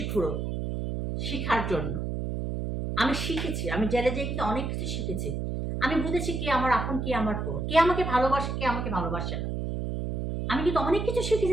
ঘুরো শিখার জন্য। আমি শিখেছি, আমি জেলে যেয়ে কিন্তু অনেক কিছু শিখেছি। আমি বুঝেছি কে আমার আপন, কে আমার পর, কে আমাকে ভালোবাসে, কে আমাকে ভালোবাসে না। আমি কিন্তু অনেক কিছু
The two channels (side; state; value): right; noise; hum, 3 dB below the sound